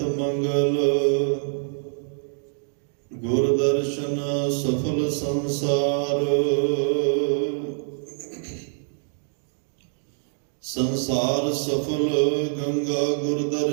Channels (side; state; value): left; silent; digital silence